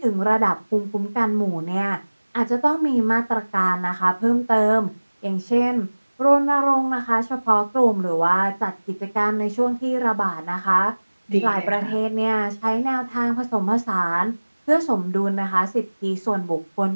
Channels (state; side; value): inverted; both; correlation -1.00